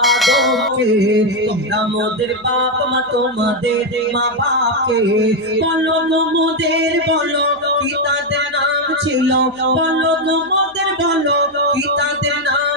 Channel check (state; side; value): noise; right; hum, 30 dB below the sound